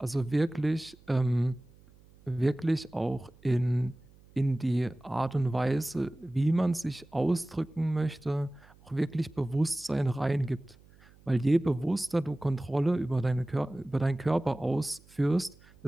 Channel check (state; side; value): noise; right; hum, 27 dB below the sound